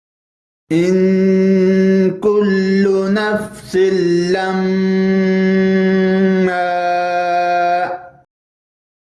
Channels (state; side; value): identical; both; correlation 1.00